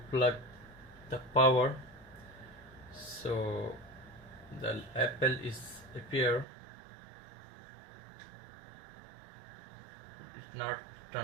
plug the power, so the Apple is appear, it's not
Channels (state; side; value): drops out; left; at 6.5 s